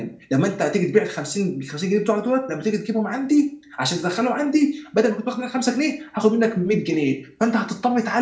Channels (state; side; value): identical; both; correlation 1.00